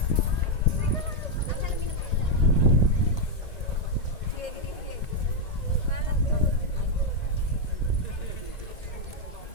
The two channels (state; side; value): late; right; 1.9 ms